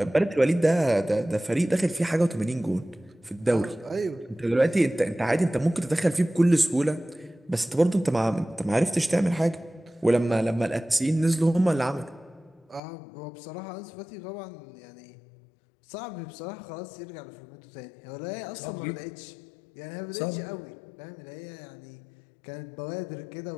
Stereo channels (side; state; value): right; drops out; at 12.8 s